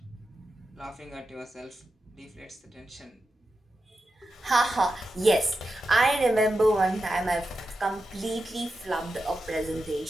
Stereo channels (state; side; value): normal; both; correlation 0.89